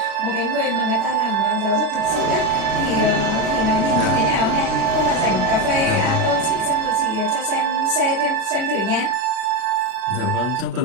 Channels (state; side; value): late; left; 36 ms